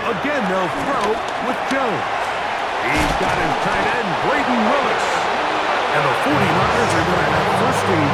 Again, they'll throw with Jones. He's got his tight end, Braden Willis. And the 49ers are going to have 1st and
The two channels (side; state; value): both; identical; correlation 1.00